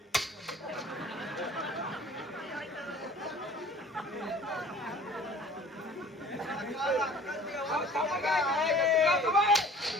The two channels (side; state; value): both; normal; correlation 0.47